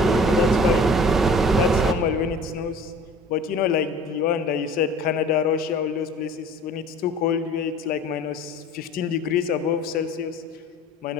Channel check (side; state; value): both; normal; correlation 0.46